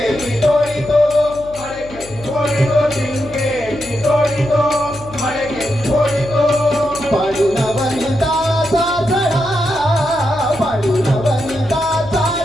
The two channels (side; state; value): left; noise; hum, 18 dB below the sound